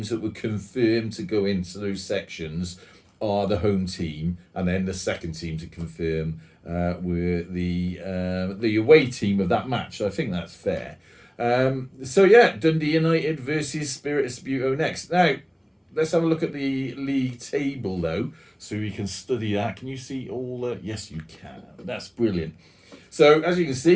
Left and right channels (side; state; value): both; identical; correlation 1.00